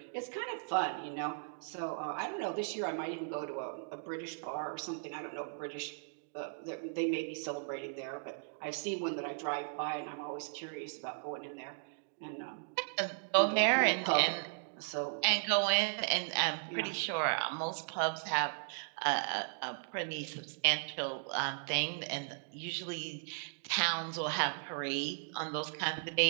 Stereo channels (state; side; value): silent; left; digital silence